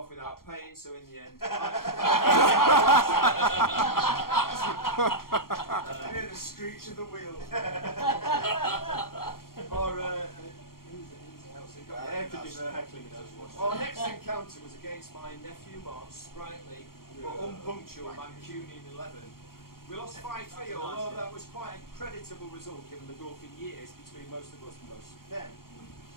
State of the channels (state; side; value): late; right; 0.93 ms